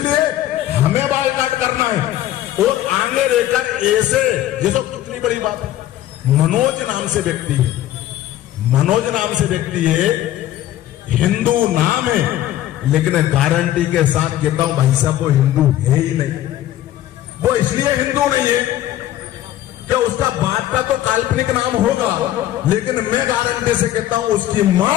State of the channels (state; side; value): quieter; right; 13.3 dB